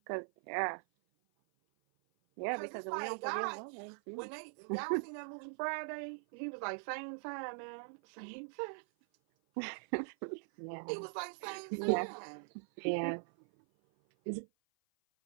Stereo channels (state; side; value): silent; left; 50 dB below the other